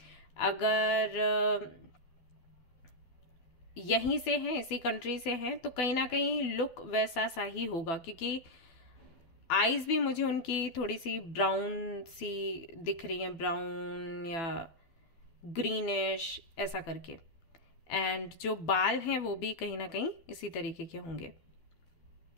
अगर यहीं से हैं, इसी कंट्री से हैं, तो कहीं ना कहीं लुक वैसा सा ही होगा, क्योंकि आईज भी मुझे उनकी थोड़ी सी ब्राउन सी दिख रही हैं, ब्राउन या ग्रीनिश ऐसा करके। एंड जो बाल हैं वो भी कहीं ना कहीं इसी तरीके के होंगे।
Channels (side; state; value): right; late; 12 ms